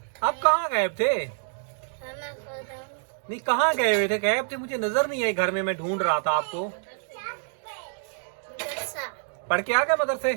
आप कहाँ गए थे? नहीं कहाँ गए हुए थे? गायब थे, मुझे नजर नहीं आई घर में। मैं ढूंढ रहा था आपको। पढ़ के आ गए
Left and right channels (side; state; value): left; silent; digital silence